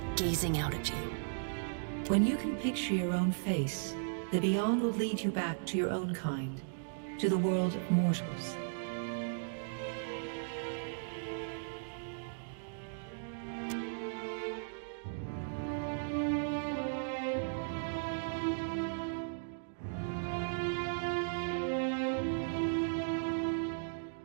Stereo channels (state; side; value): silent; left; digital silence